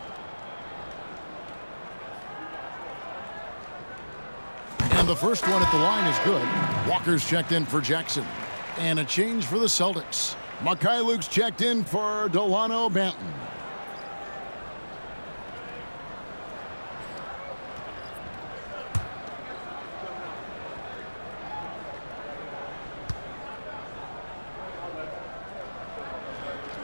And the first one at the line is good. Walker's checked in for Jackson. And a change for the Celtics. Mikhailuk's checked in for Delano Banton.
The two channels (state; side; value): inverted; both; correlation -1.00